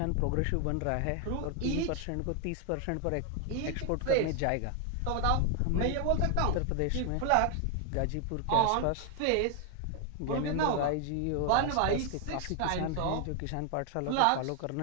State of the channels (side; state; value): both; different; correlation 0.00